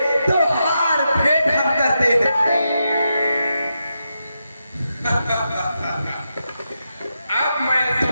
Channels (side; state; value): both; inverted; correlation -0.86